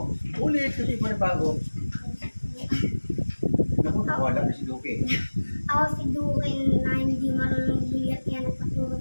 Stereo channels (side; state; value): both; inverted; correlation -1.00